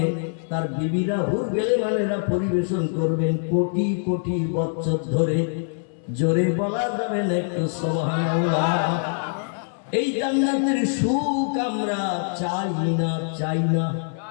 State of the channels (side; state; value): right; silent; 63 dB below the other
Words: তার বিবিরা হুর গেলেমানেরা পরিবেশন করবেন কোটি কোটি বছর ধরে। জোরে বলা যাবে না একটু সুবহানাল্লাহ। এই জান্নাতের সুখ আমরা চাই না, চাই না?